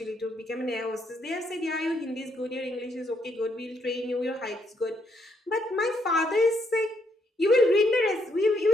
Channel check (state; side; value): normal; both; correlation 0.74